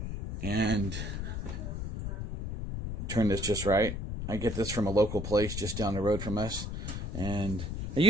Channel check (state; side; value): noise; left; rumble, 5 dB below the sound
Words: And turn this just right. I get this from a local place just down the road from us, and I